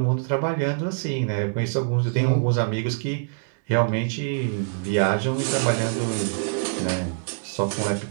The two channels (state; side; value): silent; left; digital silence